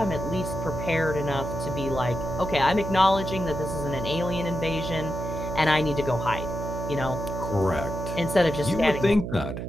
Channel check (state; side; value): noise; right; hum, 5 dB below the sound